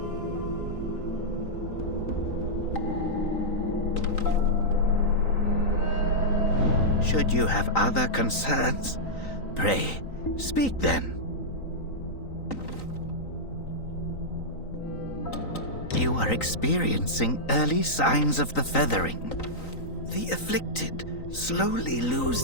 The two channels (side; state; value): right; late; 3.9 ms